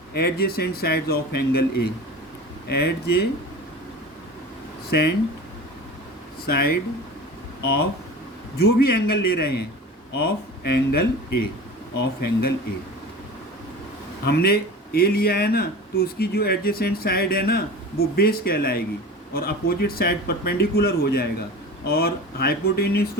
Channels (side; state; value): both; normal; correlation 0.34